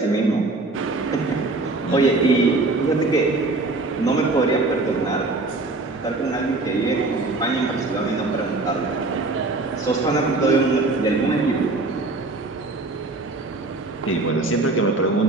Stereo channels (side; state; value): left; quieter; 3.3 dB